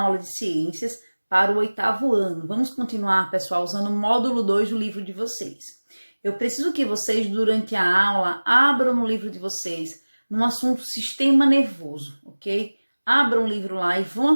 de ciências para o 8º ano. Vamos continuar, pessoal, usando o módulo 2 do livro de vocês. Eu preciso que vocês, durante a aula, abram no livro de vocês no assunto sistema nervoso, ok? Abram o livro lá e vão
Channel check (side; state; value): both; inverted; correlation -1.00